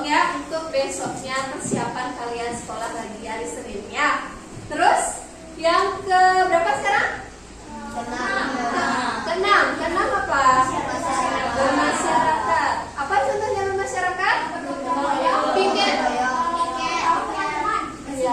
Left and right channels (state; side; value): identical; both; correlation 1.00